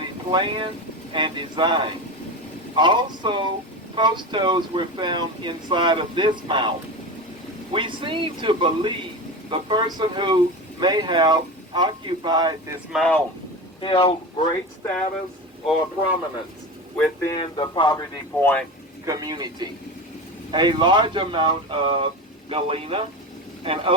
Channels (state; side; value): normal; both; correlation 0.25